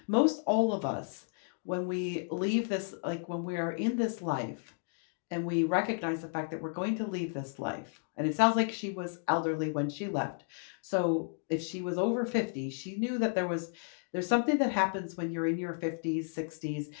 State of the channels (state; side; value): silent; right; 56 dB below the other